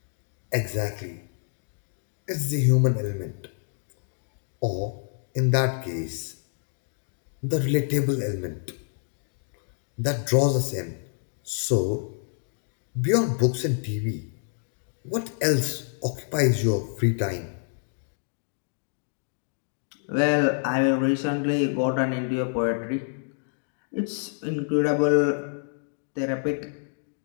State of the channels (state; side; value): silent; right; digital silence